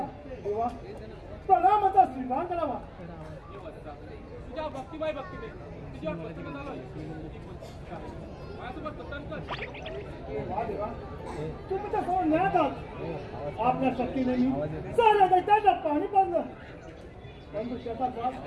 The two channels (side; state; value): both; identical; correlation 1.00